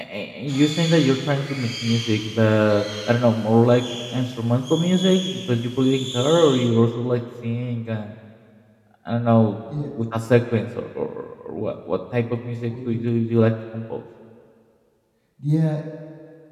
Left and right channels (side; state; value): both; identical; correlation 1.00